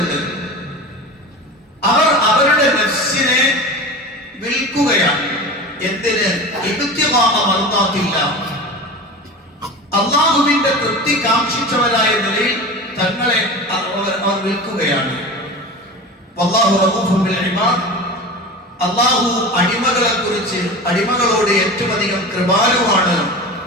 അവർ അവരുടെ നഫ്സിനെ വിൽക്കുകയാണ്. എന്തിന്? ഇബ്തിഗാഅ മർദാത്തില്ലാഹ്, അല്ലാഹുവിന്റെ തൃപ്തി കാംക്ഷിച്ചവരായ നിലയിൽ തങ്ങളെ അവർ വിൽക്കുകയാണ്. വല്ലാഹു റഊഫുൻ ബിൽ ഇബാദ്, അല്ലാഹു അടിമകളെ കുറിച്ച്, അടിമകളോട് ഏറ്റവും അധികം കൃപാലുവാണ്,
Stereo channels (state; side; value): normal; both; correlation 0.32